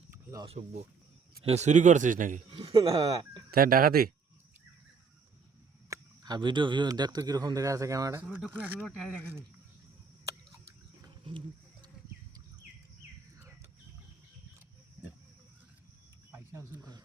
অসভ্য চুরি করছিস নাকি তাই ডাকাতি আর ভিডিও দেখতো কিরকম দেখা আছে ক্যামেরাটা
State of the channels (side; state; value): left; quieter; 5.4 dB